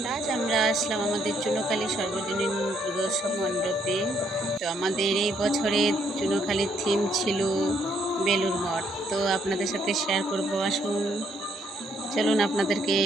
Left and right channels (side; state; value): both; normal; correlation 0.71